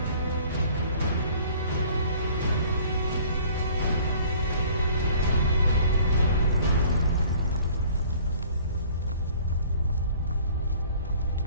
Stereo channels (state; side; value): inverted; both; correlation -0.52